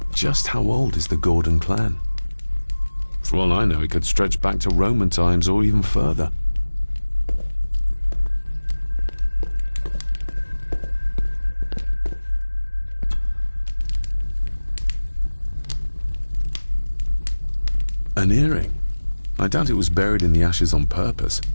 Just how old is the Gordon clan? For all I know, it could stretch back to Roman times or even further. An earring? I doubt it was buried in the ashes on purpose.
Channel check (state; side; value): inverted; both; correlation -1.00